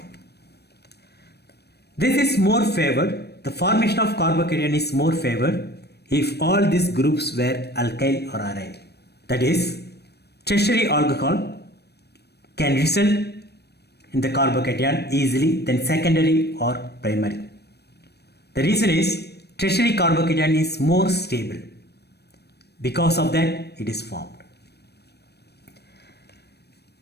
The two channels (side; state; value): right; late; 0.47 ms